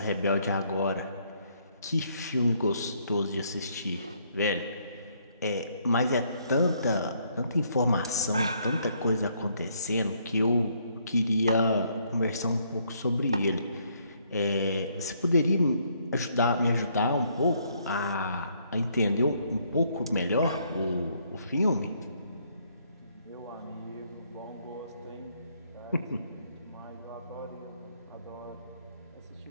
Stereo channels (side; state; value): both; inverted; correlation -0.69